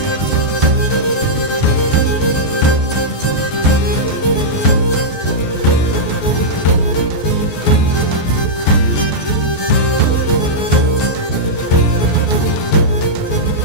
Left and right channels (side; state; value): right; late; 14 ms